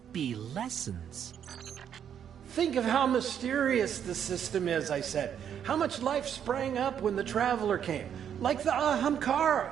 be lessons. Think of how mysterious the system is, I said. How much life sprang up when the Traveler came. Like the Ahamkara.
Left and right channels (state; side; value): quieter; left; 8.8 dB